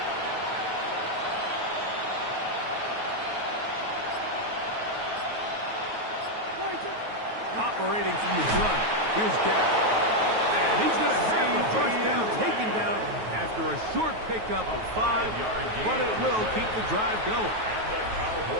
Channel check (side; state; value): left; late; 9.3 ms